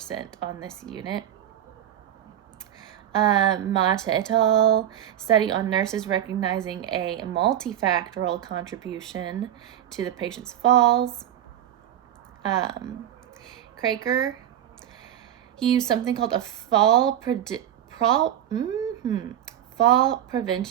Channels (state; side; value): quieter; left; 11.1 dB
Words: on this unit. Mata et al. Study on nurses recognizing a multifactorial contribution to the patient's falls. Craker, he used something called a fall